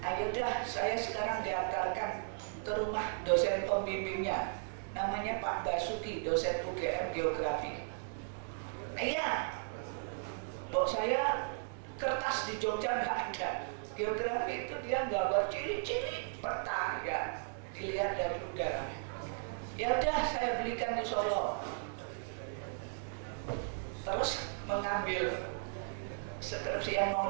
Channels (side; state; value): left; silent; digital silence